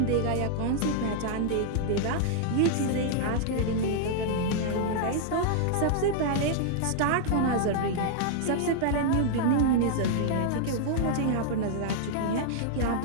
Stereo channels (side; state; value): both; different; correlation -0.01